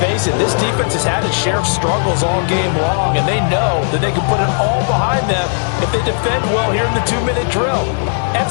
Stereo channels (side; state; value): right; silent; digital silence